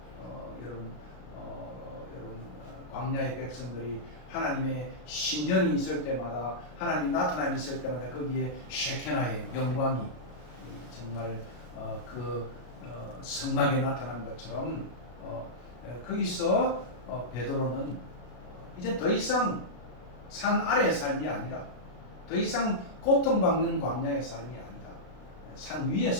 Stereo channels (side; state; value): right; late; 33 ms